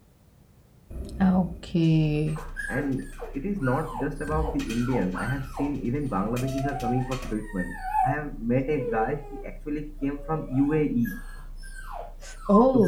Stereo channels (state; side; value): identical; both; correlation 1.00